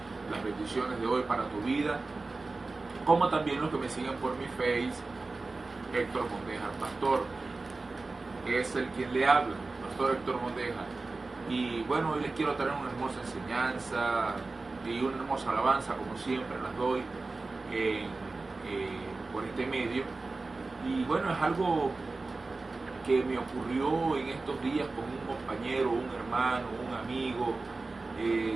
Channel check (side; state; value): left; quieter; 3.6 dB